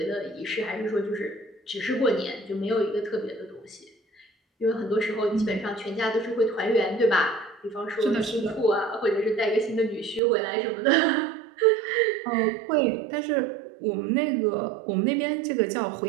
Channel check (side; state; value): left; drops out; at 10.2 s